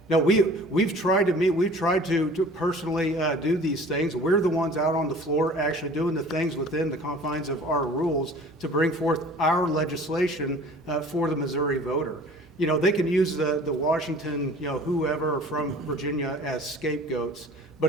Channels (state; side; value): normal; both; correlation 0.46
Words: No, we've tried to meet, we've tried to personally do these things. We're the ones out on the floor actually doing the things within the confines of our rules to bring forth our legislation for the Missouri voter. You know, they can use the Washington, whoever from Virginia as scapegoats, but